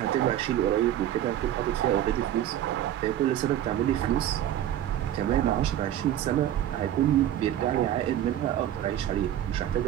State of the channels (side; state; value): left; quieter; 11.7 dB